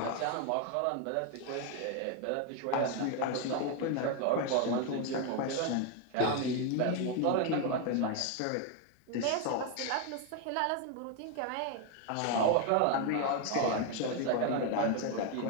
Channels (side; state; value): both; different; correlation 0.01